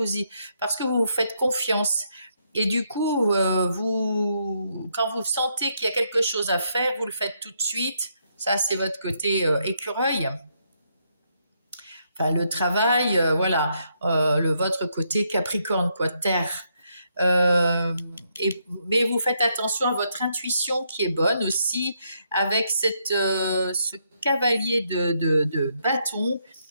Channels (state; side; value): inverted; both; correlation -0.76